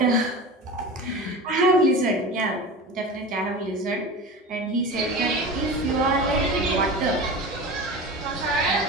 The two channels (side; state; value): both; normal; correlation 0.31